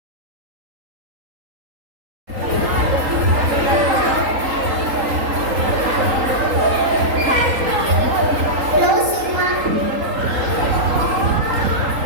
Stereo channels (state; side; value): late; left; 3.8 ms